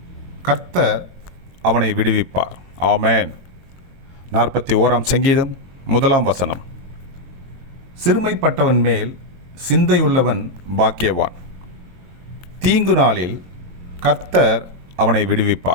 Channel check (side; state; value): left; late; 23 ms